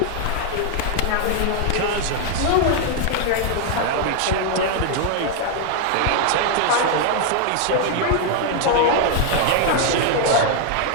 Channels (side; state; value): both; different; correlation 0.00